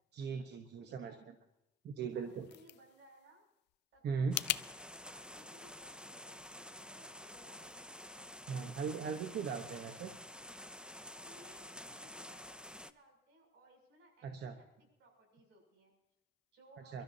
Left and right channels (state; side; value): normal; both; correlation 0.40